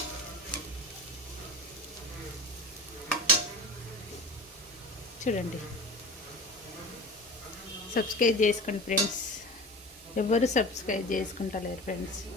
చూడండి, సబ్స్క్రైబ్ చేసుకోండి ఫ్రెండ్స్. ఎవరు సబ్స్క్రైబ్ చేసుకుంటలేరు ఫ్రెండ్స్.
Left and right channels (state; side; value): normal; both; correlation 0.34